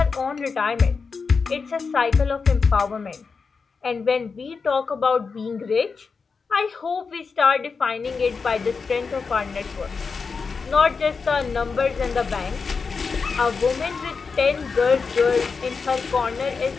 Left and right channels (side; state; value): right; quieter; 5.0 dB